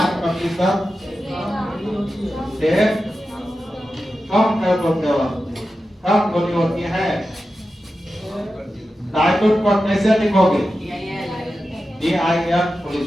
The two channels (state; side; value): normal; both; correlation 0.92